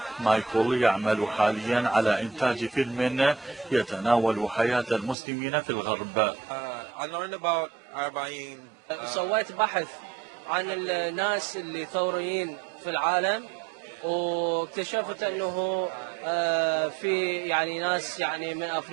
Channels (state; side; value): drops out; left; at 5.2 s